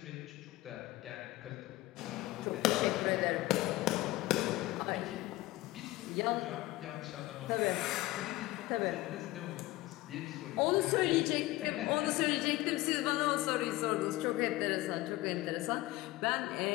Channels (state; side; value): quieter; right; 18.5 dB